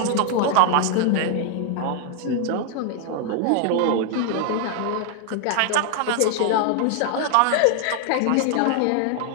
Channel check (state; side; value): different; both; correlation 0.00